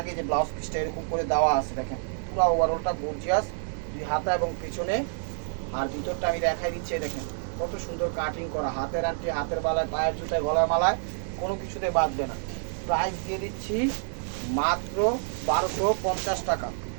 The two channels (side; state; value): left; silent; 59 dB below the other